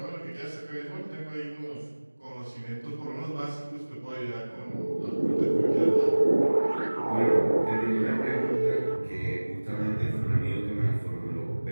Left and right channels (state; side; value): inverted; both; correlation -1.00